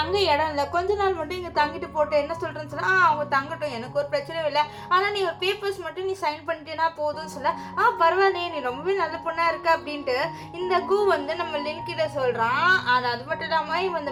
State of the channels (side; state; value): both; identical; correlation 1.00